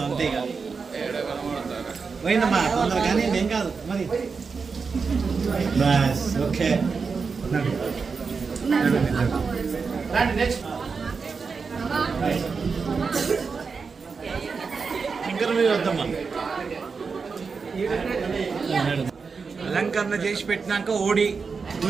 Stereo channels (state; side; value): quieter; left; 5.1 dB